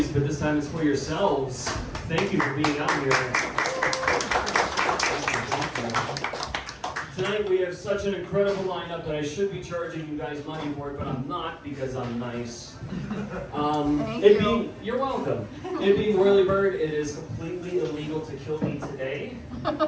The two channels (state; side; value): identical; both; correlation 1.00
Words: but this time it's for yourselves. Thank you for being out here. Tonight we have such an incredible lineup that I should be charging you guys money for it, but I'm not because I'm nice. You're welcome. It being Whirlybird, it is completely illegal to kill me today.